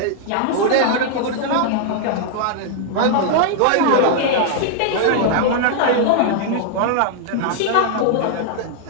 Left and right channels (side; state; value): both; different; correlation -0.01